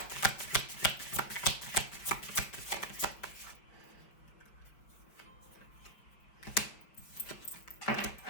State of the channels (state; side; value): late; right; 5.1 ms